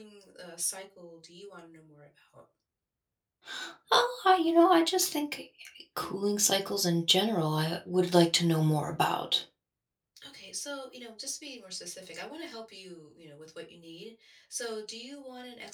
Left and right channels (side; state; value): both; identical; correlation 1.00